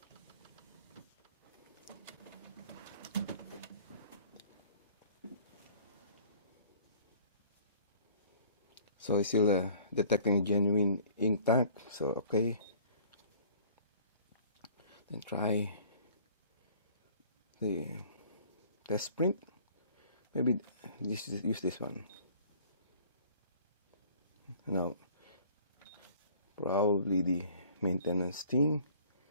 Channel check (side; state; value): both; inverted; correlation -0.53